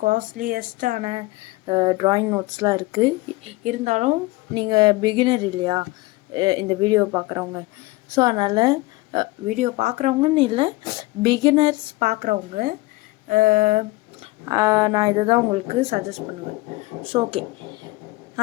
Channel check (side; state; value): right; quieter; 21.4 dB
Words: காஸ்ட்லியஸ்டான ட்ராயிங் நோட்ஸ்லாம் இருக்குது. இருந்தாலும் நீங்கள் பிகினர் இல்லையா இந்த வீடியோ பார்க்குறவங்க, ஸோ அதனால் வீடியோ பார்க்குறவங்கன்னு இல்லை, பிகினர்ஸ் பார்க்குறவங்க நான் இதை தான் உங்களுக்கு சஜஸ்ட் பண்ணுவேன். ஸோ ஓகே,